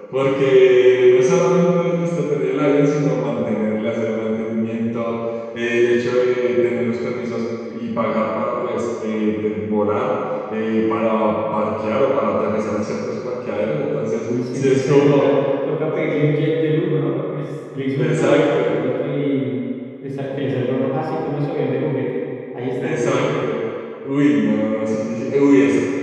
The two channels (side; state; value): both; identical; correlation 1.00